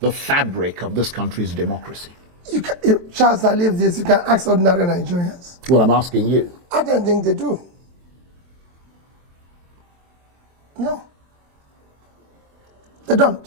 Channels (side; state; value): left; late; 23 ms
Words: fabric of this country's democracy? You can, if Charles, I leave this, you can ask ordinary Nigerians. Well, I'm asking you. I don't think they do. No. They